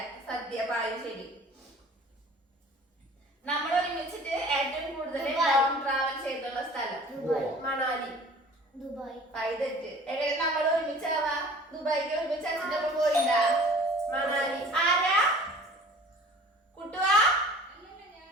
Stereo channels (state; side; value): normal; both; correlation 0.47